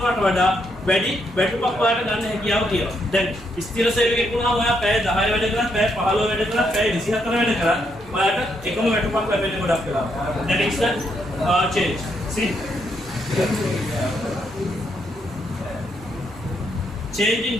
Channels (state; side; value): noise; right; hum, 26 dB below the sound